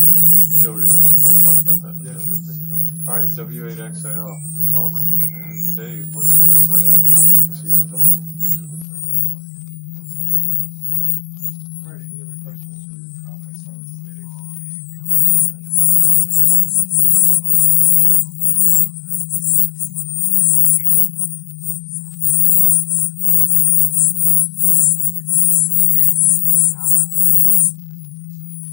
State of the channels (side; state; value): right; drops out; at 8.8 s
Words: noted. We'll talk about that today. Yeah, sure thing. All right, W8XAL, welcome. And Dave, what's your question or comment this evening? Go ahead. All right, any other questions or comments on the day? Go ahead and key up and set your pulse and we'll move on to the next part.